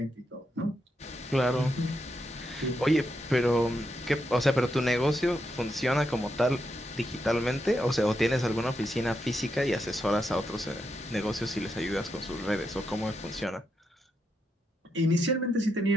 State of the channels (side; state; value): both; normal; correlation 0.83